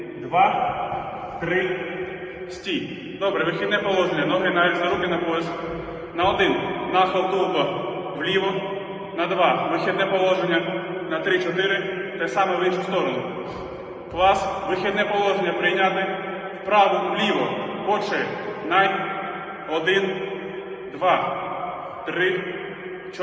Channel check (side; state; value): both; identical; correlation 1.00